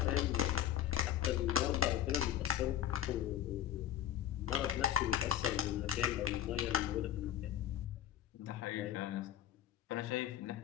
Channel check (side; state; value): right; quieter; 10.8 dB